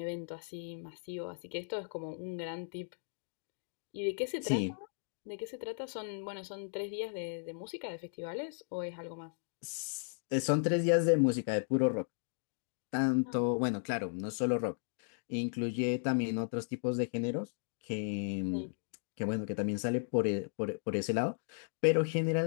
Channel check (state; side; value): silent; right; digital silence